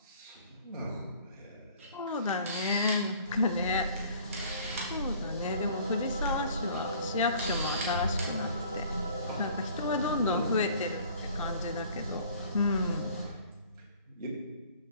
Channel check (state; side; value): inverted; both; correlation -0.53